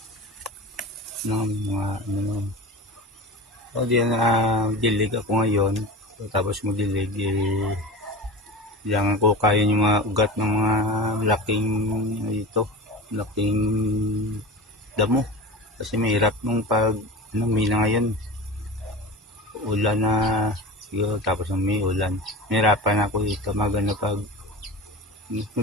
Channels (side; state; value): both; normal; correlation 0.31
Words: Mga ano. So, dilig ako ngayon. So, tapos magdilig, kailangan ko kaya yung mga ugat ng mga laking damo. Kasi mahirap nung pag may na ngayon. Ulan na siguro, tapos may ulan. Mahirapan ako dito magano pag